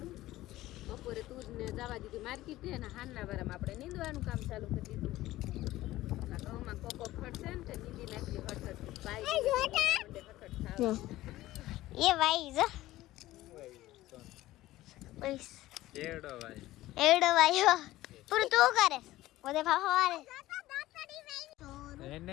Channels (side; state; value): right; quieter; 16.2 dB